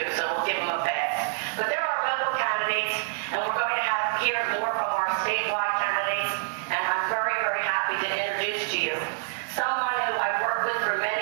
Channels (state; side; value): silent; left; digital silence